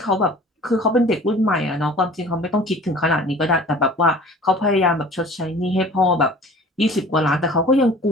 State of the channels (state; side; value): normal; both; correlation 0.45